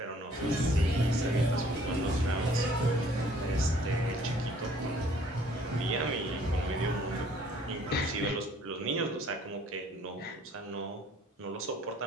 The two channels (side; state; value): both; normal; correlation 0.58